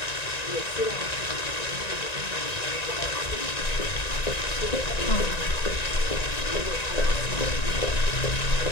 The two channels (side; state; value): right; late; 1.9 ms